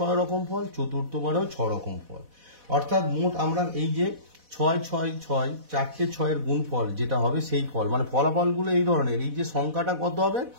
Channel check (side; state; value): left; late; 4.1 ms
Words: রকম ফল, চতুর্থবারেও 6 রকম ফল। অর্থাৎ মোট আমরা এই যে 6 6 6 4টে 6-এর গুণফল যেটা হবে সেই ফল, মানে ফলাফলগুলো এই ধরনের। এই যে সংখ্যাটা কত হবে